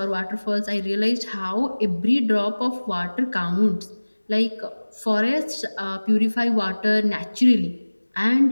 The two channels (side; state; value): both; inverted; correlation -1.00